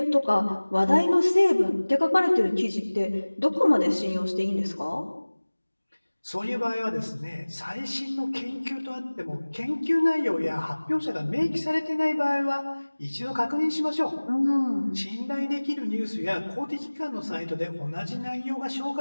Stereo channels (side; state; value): both; inverted; correlation -1.00